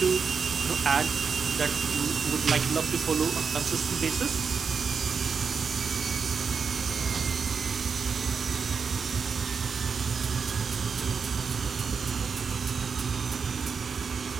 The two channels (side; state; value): left; quieter; 5.8 dB